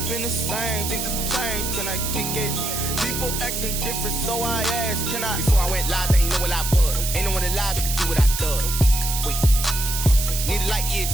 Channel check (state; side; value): noise; right; hiss, 3 dB below the sound